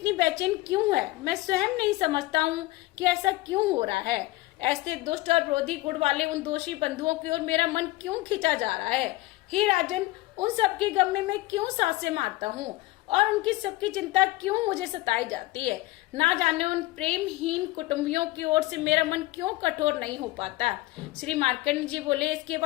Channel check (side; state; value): right; quieter; 19.0 dB